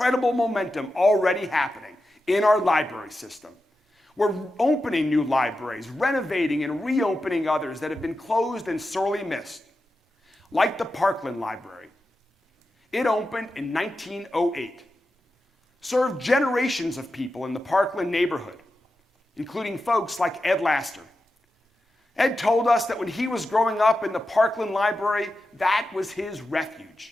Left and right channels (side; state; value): both; normal; correlation 0.90